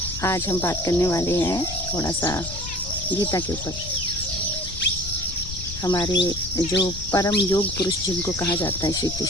आज हम बात करने वाले हैं थोड़ा सा गीता के ऊपर। हमारे जो परम योग पुरुष जिनको कहा जाता है श्री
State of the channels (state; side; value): noise; left; rumble, 10 dB below the sound